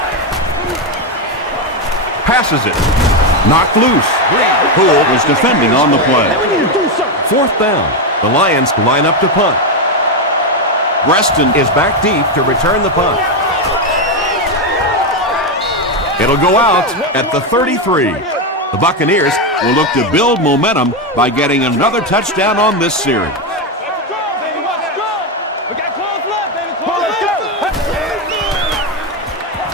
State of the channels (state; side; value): normal; both; correlation 0.08